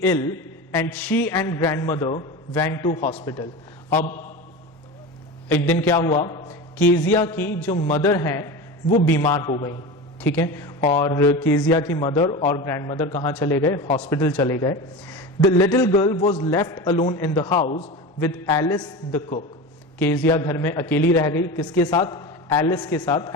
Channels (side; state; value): both; normal; correlation 0.27